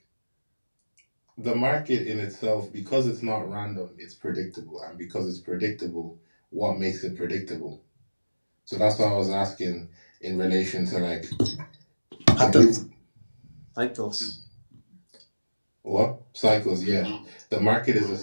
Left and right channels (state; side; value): inverted; both; correlation -1.00